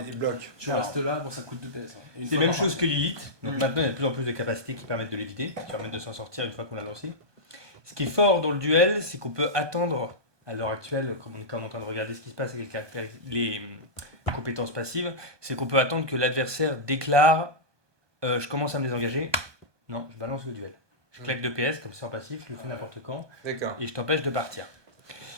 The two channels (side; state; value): left; late; 1.2 ms